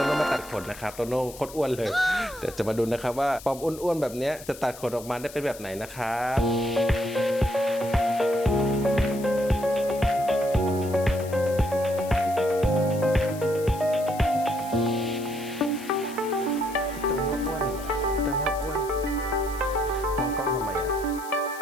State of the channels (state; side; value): noise; left; hiss, 17 dB below the sound